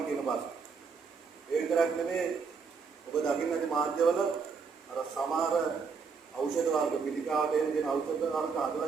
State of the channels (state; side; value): quieter; left; 5.3 dB